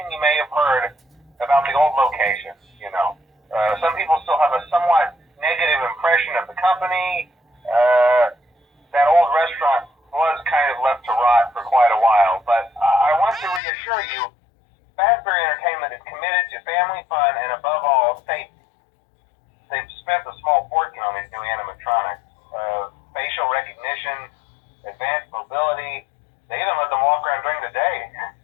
you may have heard about the old location, you know. Some people still have a somewhat negative impression of the company. That old restaurant was kind of left to rot for quite a while, but I want to reassure you, Fazbear Entertainment is committed to family fun and above all, safety. They've spent a small fortune on these new animatronics. Facial recognition, advanced mobility, they even let them walk around during the day.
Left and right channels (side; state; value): right; drops out; at 13.6 s